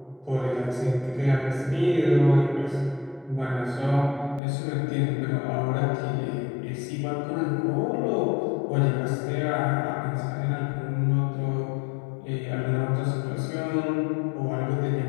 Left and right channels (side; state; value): right; drops out; at 4.4 s